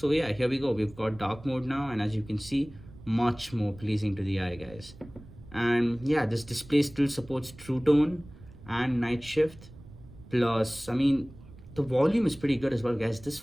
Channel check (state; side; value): noise; right; rumble, 19 dB below the sound